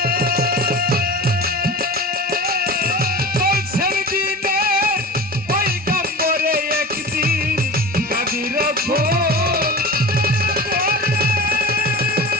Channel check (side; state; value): both; normal; correlation 0.33